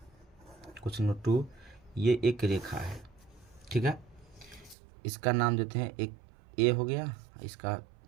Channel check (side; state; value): left; drops out; at 4.8 s